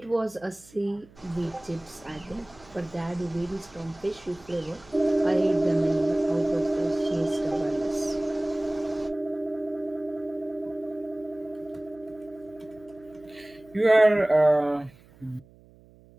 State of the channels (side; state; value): right; noise; hum, 25 dB below the sound